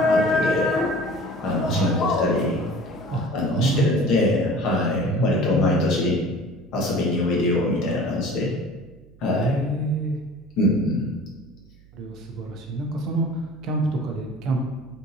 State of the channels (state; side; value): noise; right; hum, 25 dB below the sound